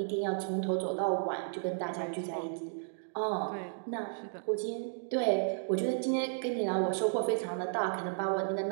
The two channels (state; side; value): silent; left; digital silence